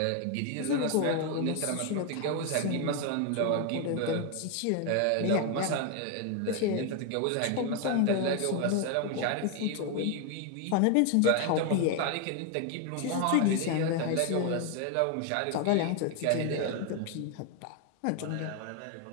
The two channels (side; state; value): both; different; correlation 0.01